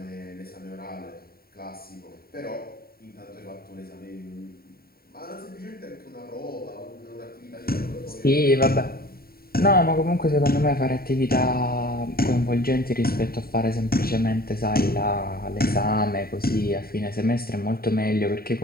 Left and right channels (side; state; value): right; late; 0.44 ms